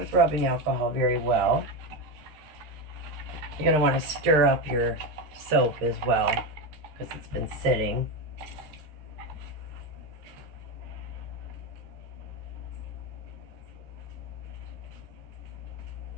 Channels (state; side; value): late; left; 13 ms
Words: rubbing alcohol very well. You're going to want to stir up your soap as well, because it's been sitting.